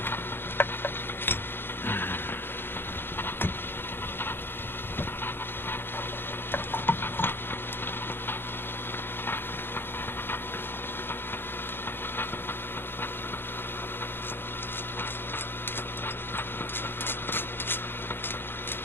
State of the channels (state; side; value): late; right; 0.10 ms